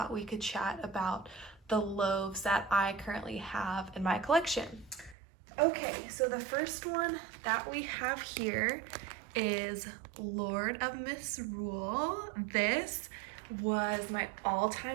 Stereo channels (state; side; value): drops out; left; at 5.2 s